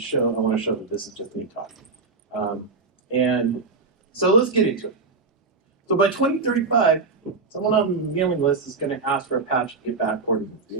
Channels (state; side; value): quieter; left; 4.3 dB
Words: that this is just me talking. And so let's get into it. So by 2035, someone on the mailing list is going to ask for Apache to get backported to